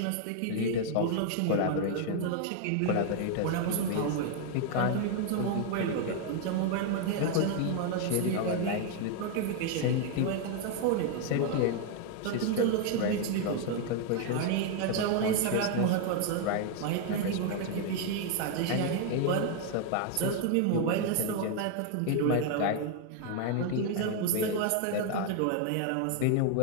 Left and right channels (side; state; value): both; different; correlation 0.00